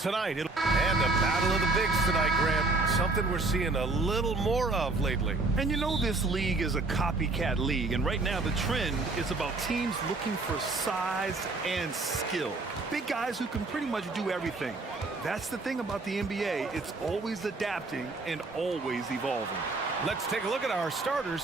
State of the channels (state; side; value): quieter; left; 3.4 dB